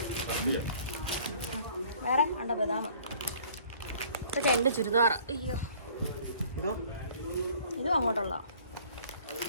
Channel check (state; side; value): inverted; both; correlation -0.54